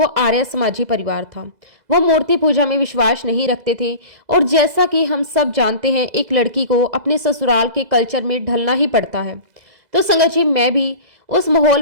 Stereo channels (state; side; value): late; left; 2.0 ms